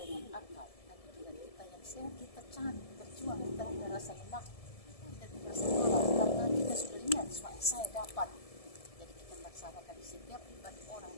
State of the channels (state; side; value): late; right; 1.7 ms